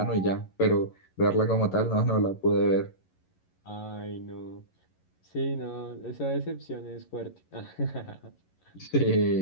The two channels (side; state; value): right; late; 11 ms